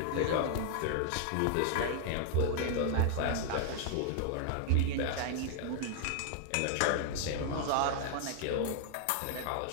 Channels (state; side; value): different; both; correlation 0.00